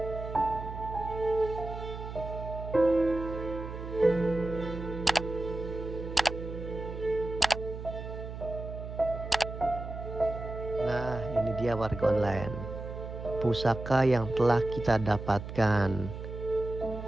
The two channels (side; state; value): right; noise; hum, 9 dB below the sound